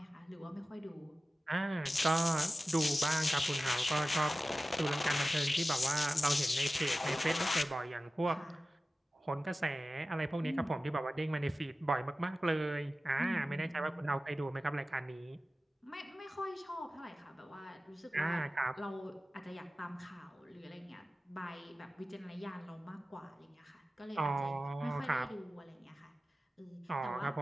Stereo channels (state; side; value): normal; both; correlation 0.95